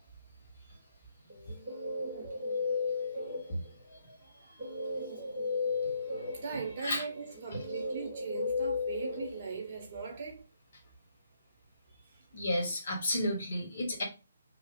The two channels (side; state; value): both; inverted; correlation -0.73